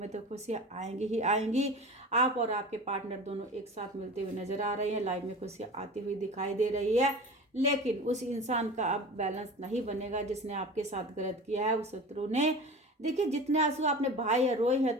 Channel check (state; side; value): normal; both; correlation 0.34